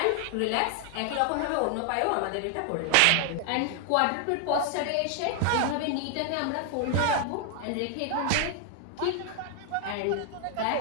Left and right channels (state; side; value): different; both; correlation 0.00